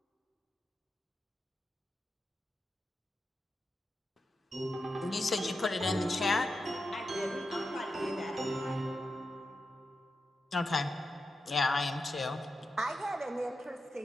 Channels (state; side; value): normal; both; correlation 0.89